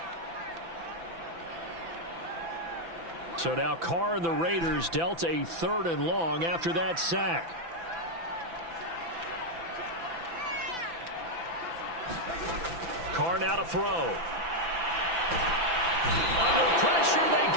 So now Carr and the Raiders dealt a 3rd and long after that sack. Carr now to throw. Under pressure, they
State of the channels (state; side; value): late; left; 6.0 ms